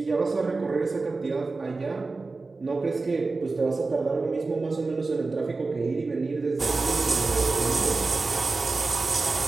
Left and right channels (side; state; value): left; quieter; 3.7 dB